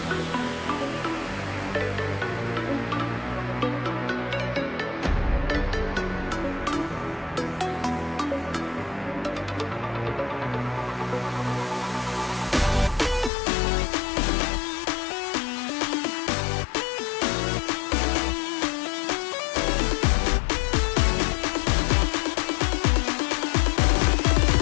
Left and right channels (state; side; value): drops out; right; at 13.3 s